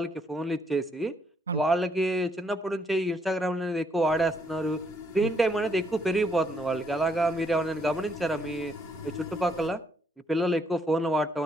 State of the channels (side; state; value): both; normal; correlation 0.73